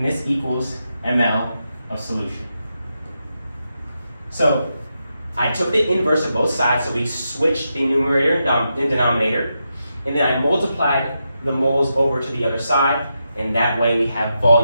this equals ml of solution. So I took the inverse of both sides, so we switched the numerator and denominator, and then I multiplied the moles over to the other side, and that way we have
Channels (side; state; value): both; inverted; correlation -0.86